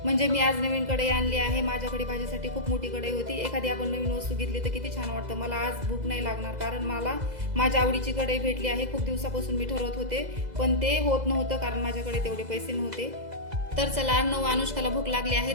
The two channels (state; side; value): late; left; 2.0 ms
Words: म्हणजे मी आज नवीन कढई आणली आहे. माझ्याकडे भाजीसाठी खूप मोठी कढई होती. एखादी आपण नवीन वस्तू घेतली तर किती छान वाटतं. मला आज भूक नाही लागणार, कारण मला माझ्या आवडीची कढई भेटली आहे. खूप दिवसापासून मी ठरवत होते, पण ते होत नव्हतं, कारण माझ्याकडे तेवढे पैसे नव्हते. तर चला, अर्णव, अनुष्काला भूक लागली आहे,